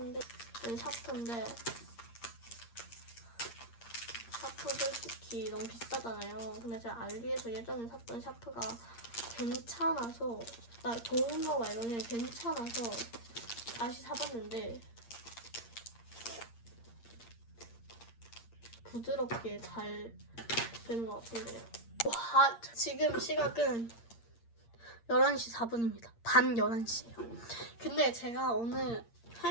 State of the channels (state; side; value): late; right; 8.6 ms